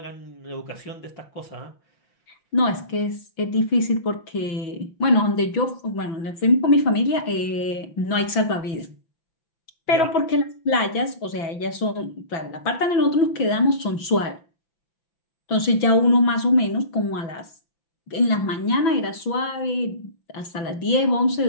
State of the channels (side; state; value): right; late; 6.1 ms